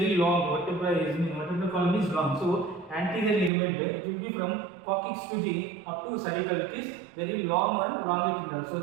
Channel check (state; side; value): drops out; left; at 3.5 s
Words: long. Vertebral column is long. So anterior ligament, it will be from coccyx to the up to cervical. It is very long and longitudinal. So